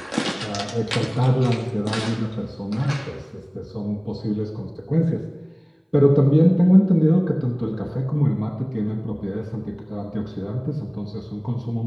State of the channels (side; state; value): both; identical; correlation 1.00